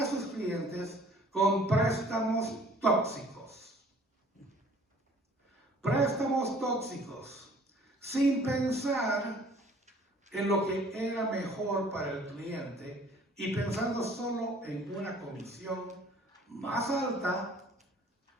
a sus clientes con préstamos tóxicos. Préstamos tóxicos, sin pensar en lo que era mejor para el cliente y pensando solo en una comisión más alta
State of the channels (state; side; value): normal; both; correlation 0.53